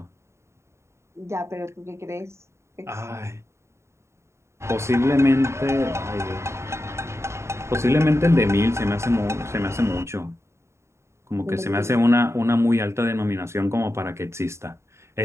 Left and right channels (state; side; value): late; left; 0.13 ms